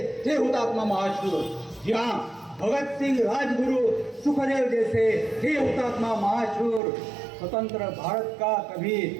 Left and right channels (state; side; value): drops out; left; at 6.8 s